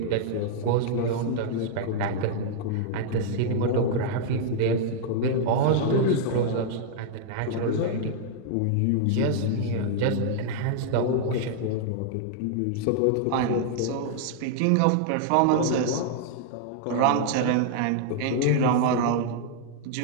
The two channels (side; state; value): both; different; correlation -0.01